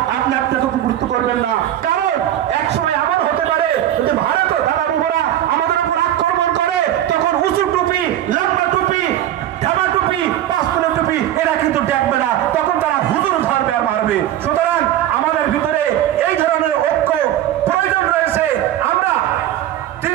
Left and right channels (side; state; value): left; quieter; 12.2 dB